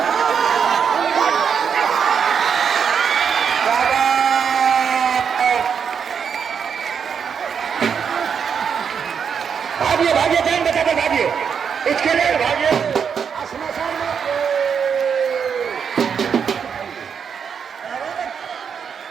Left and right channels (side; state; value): left; quieter; 6.9 dB